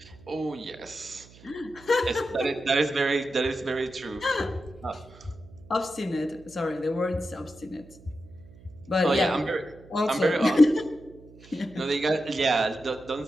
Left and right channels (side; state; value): right; noise; hum, 22 dB below the sound